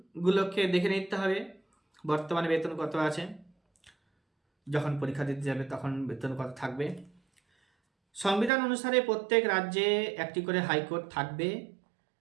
দেখে নিতে হবে বর্তমানে বেতন কত আছে, যখন পরীক্ষা দিতে যাবে তখন বেতন কত থাকবে। সংবিধান অনুসারে প্রত্যেক রাজ্যে একটি করে হাইকোর্ট থাকবে,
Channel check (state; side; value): drops out; left; at 8.5 s